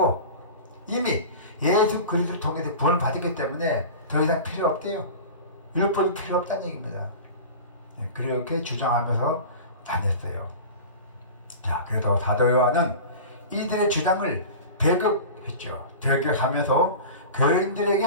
이미 예수 그리스도를 통해서 구원을 받았기 때문에 더 이상 필요 없대요. 율법이 필요 없다는 얘기입니다. 그렇게 주장하면서 다녔어요. 자, 그래도 사도 요한은 이들의 주장을 배격했죠. 배격하면서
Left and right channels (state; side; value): inverted; both; correlation -0.33